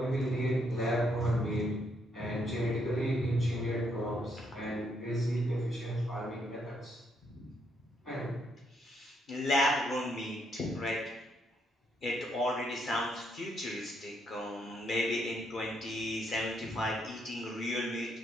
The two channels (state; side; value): normal; both; correlation 0.74